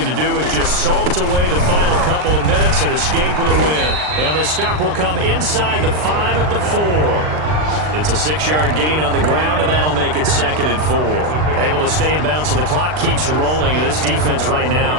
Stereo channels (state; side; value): late; left; 39 ms